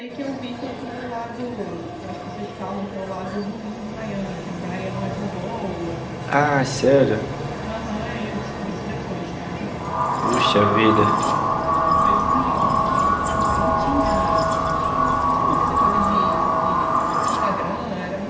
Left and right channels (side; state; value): both; identical; correlation 1.00